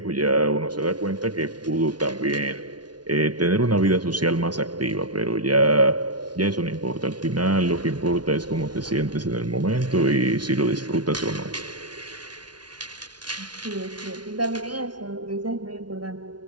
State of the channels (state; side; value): late; left; 0.70 ms